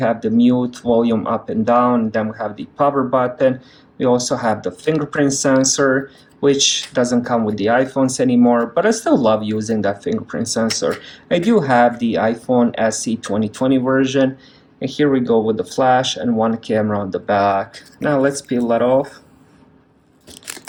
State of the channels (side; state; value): both; identical; correlation 1.00